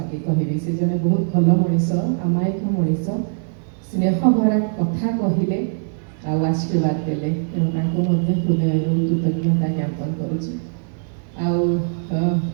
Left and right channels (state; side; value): silent; left; 65 dB below the other